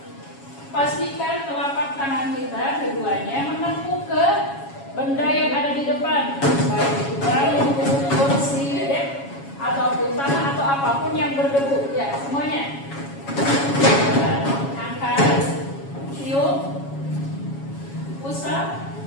Pastikan telapak tangan kita keduanya menempuh ke benda yang ada di depan, baik itu bambu, kursi, ataupun tanah atau apapun yang berdebu. Ya, semuanya. Angkat, tiup, usap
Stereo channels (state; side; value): late; right; 7.2 ms